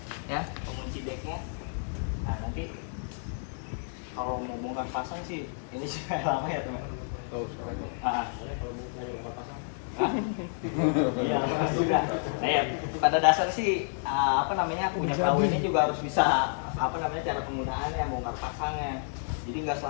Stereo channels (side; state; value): right; silent; digital silence